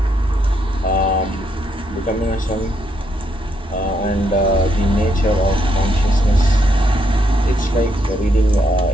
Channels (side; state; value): both; normal; correlation 0.76